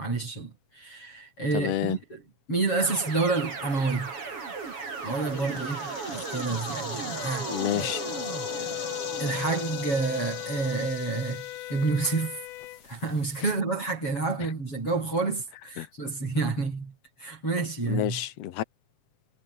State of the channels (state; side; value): late; right; 7.2 ms